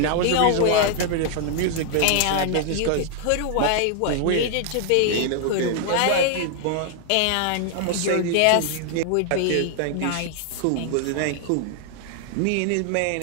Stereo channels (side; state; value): both; different; correlation 0.00